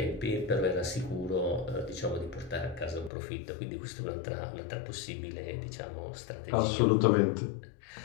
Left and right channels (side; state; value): right; drops out; at 3.1 s